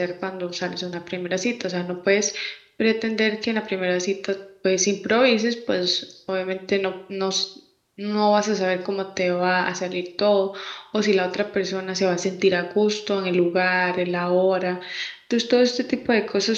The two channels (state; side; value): identical; both; correlation 1.00